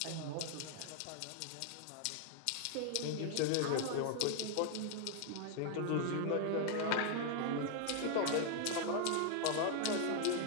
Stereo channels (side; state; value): both; different; correlation 0.00